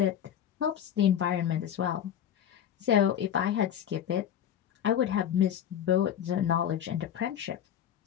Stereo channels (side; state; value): right; quieter; 9.7 dB